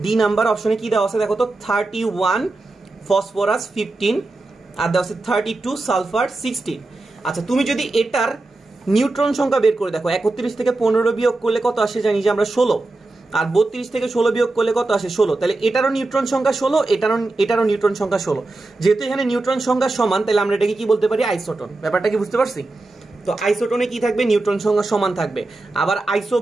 ডি নাম্বার অপশনে কি দেওয়া আছে দেখো তো, 31 ফসফরাস 15 আর দেওয়া আছে 32 সালফার 16। আচ্ছা, তুমি যদি এটার নিউট্রন সংখ্যা বের করে দেখো, 31 থেকে 15 বিয়োগ করলে কত আসে জানি যে আমরা 16, আর 32 থেকে 16 বিয়োগ করলে কত আসে? 16। তাহলে এটারও নিউট্রন সংখ্যা 16, এটারও নিউট্রন সংখ্যা 16। যেহেতু এখানে নিউট্রন সংখ্যা সমান, তাহলে আমরা এটাকে কি বলতে পারি? আইসোটোন। ব্যাপারটা কি বুঝতে পারছি? তো আইসোটোনে কি থাকবে? নিউট্রন সংখ্যা সমান থাকবে। আবার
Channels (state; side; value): quieter; left; 3.1 dB